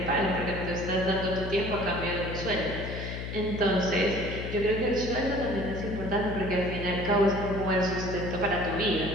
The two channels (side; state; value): left; noise; hum, 6 dB below the sound